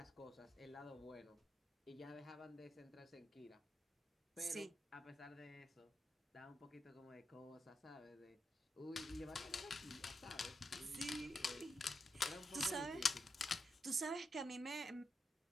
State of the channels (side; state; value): both; normal; correlation 0.86